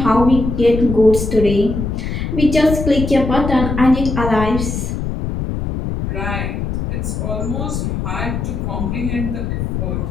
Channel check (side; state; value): left; noise; rumble, 3 dB below the sound